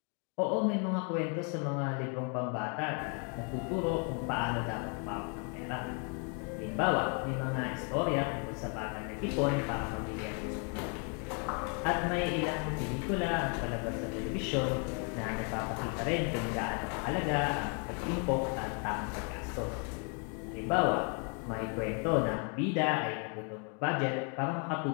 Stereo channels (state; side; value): quieter; right; 38.5 dB